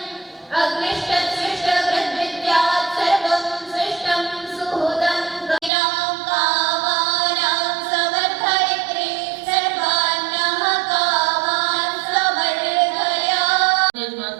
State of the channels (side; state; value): left; drops out; at 5.7 s